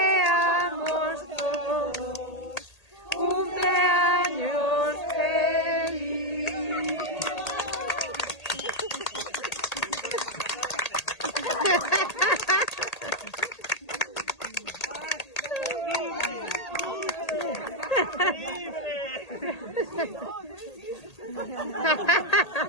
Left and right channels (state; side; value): late; right; 1.8 ms